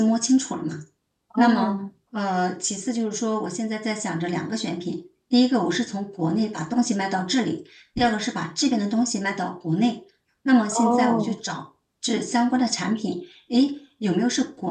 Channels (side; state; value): both; identical; correlation 1.00